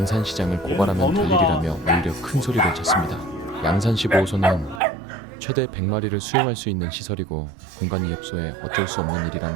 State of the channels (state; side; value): drops out; left; at 4.8 s